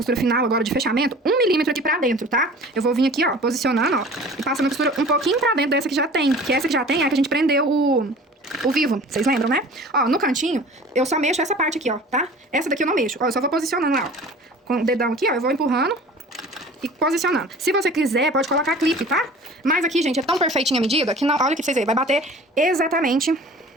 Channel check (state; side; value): normal; both; correlation 0.44